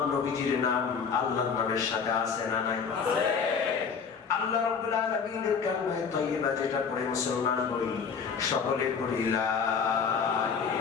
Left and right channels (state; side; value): quieter; right; 6.1 dB